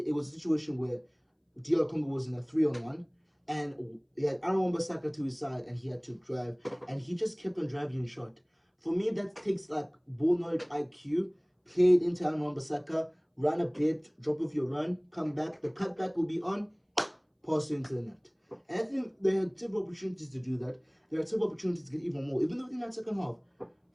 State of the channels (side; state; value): both; identical; correlation 1.00